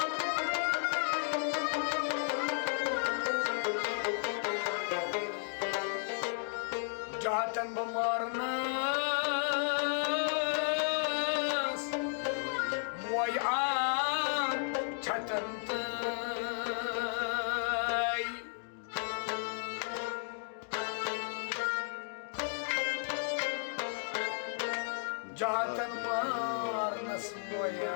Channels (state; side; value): silent; right; digital silence